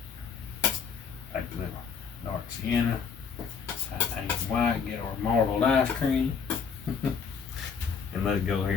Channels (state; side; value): quieter; right; 6.2 dB